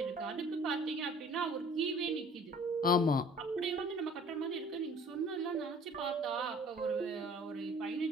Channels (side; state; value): both; normal; correlation 0.51